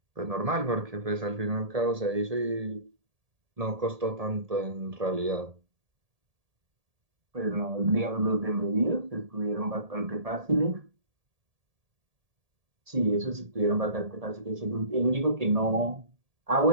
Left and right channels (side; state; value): left; late; 1.7 ms